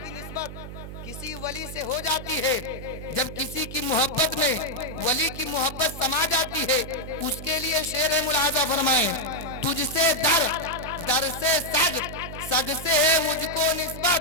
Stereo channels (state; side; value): noise; right; hum, 12 dB below the sound